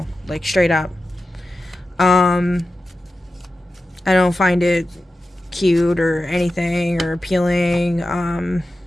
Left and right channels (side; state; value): both; normal; correlation 0.92